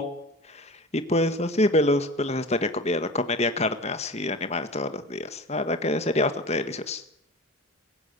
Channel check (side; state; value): both; normal; correlation 0.33